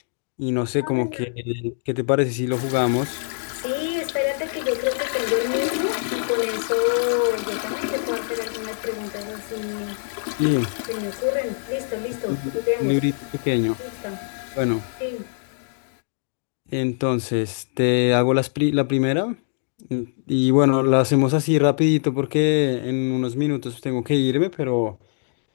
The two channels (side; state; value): right; silent; digital silence